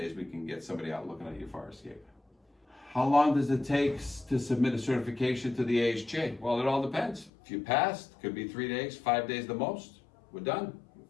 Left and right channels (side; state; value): right; drops out; at 7.3 s